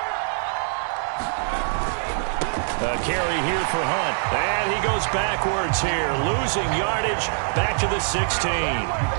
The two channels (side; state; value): left; silent; 57 dB below the other